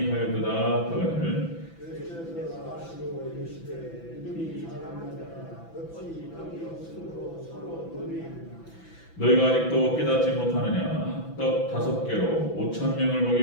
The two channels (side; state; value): right; late; 6.0 ms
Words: 하거늘 예수께서 하시고 이르시되 이들이 자랑하다가 어찌 떡이 없으므로 서로 논의하느냐 너희가 아직도 깨닫지 못하느냐 떡 5개로 5,000명을